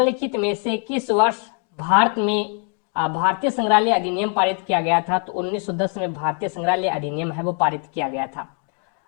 में से किस वर्ष भारत में भारतीय संग्रहालय अधिनियम पारित किया गया था। तो 1910 में भारतीय संग्रहालय अधिनियम है वो पारित किया गया था।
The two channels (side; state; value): right; quieter; 39.7 dB